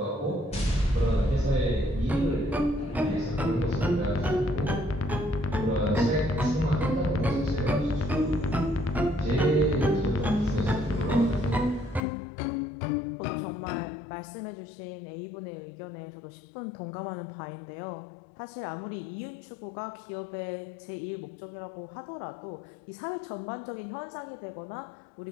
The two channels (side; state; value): right; drops out; at 12.0 s